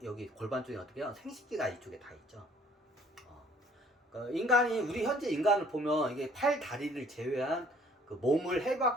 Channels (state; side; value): normal; both; correlation 0.58